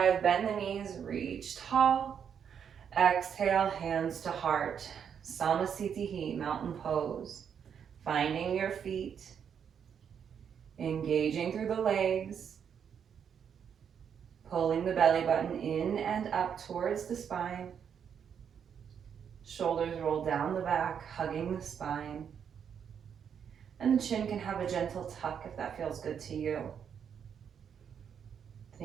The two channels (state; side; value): quieter; left; 7.8 dB